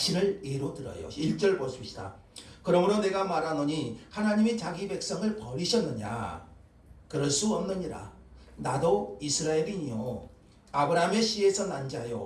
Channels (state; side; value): identical; both; correlation 1.00